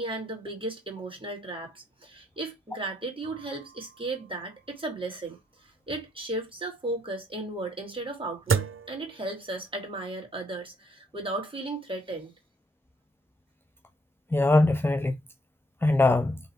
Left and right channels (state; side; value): normal; both; correlation 0.72